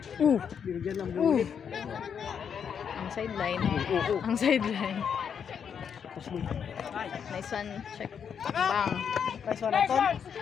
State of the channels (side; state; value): right; quieter; 7.4 dB